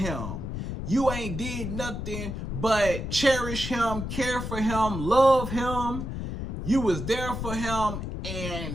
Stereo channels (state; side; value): noise; left; rumble, 5 dB below the sound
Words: You ain't did nothing but cherish him, care for him, love him. You was there for him